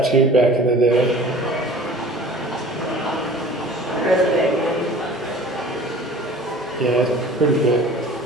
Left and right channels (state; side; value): normal; both; correlation 0.44